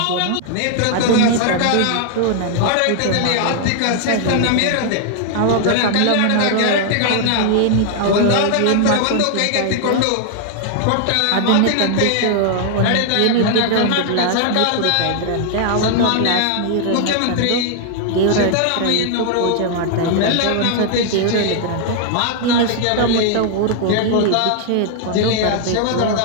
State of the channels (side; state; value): both; different; correlation 0.00